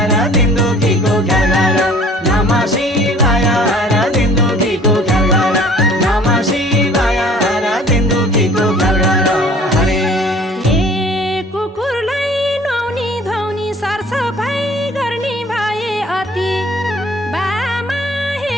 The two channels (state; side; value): normal; both; correlation 0.52